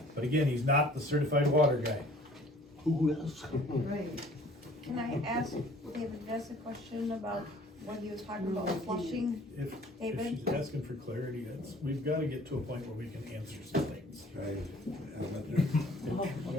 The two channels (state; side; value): normal; both; correlation 0.53